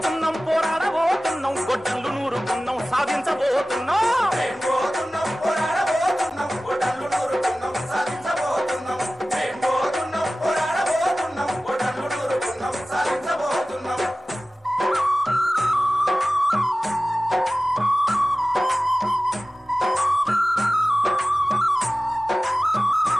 పోరాడబోతున్నాం గొడ్డళ్ళు నూరుకున్నాం సాధించబోతున్నాం మేం పోతున్నాం పోరాడబోతున్నాం గొడ్డళ్ళు నూరుకున్నాం సాధించబోతున్నాం. మేం పోతున్నాం పోరాడబోతున్నాం గొడ్డళ్ళు నూరుకున్నాం సాధించబోతున్నాం.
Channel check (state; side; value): normal; both; correlation 0.96